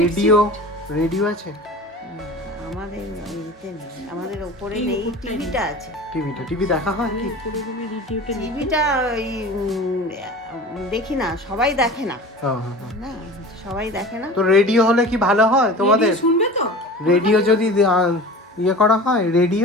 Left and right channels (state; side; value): normal; both; correlation 0.36